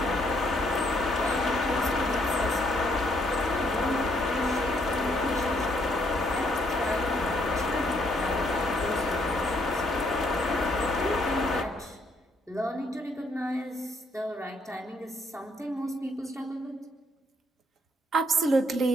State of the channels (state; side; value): normal; both; correlation 0.70